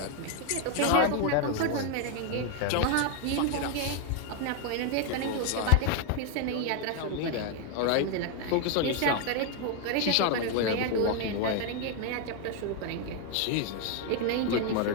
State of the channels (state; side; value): different; both; correlation 0.01